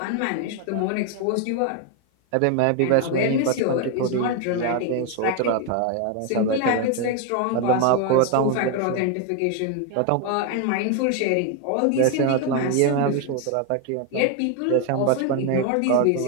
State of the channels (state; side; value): different; both; correlation 0.01